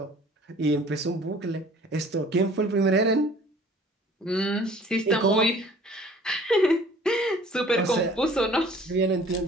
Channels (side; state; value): both; normal; correlation 0.51